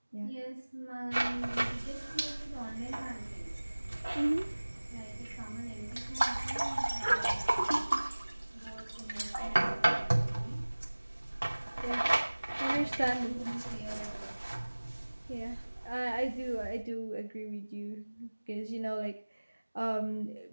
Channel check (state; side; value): inverted; both; correlation -1.00